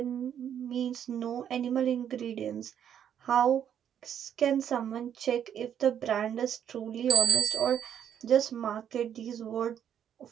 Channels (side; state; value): left; quieter; 9.3 dB